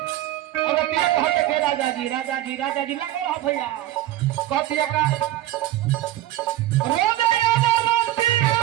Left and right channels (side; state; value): left; quieter; 14.9 dB